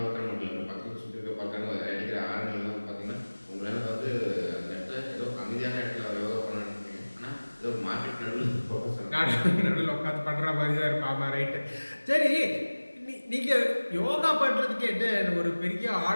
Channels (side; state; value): both; inverted; correlation -1.00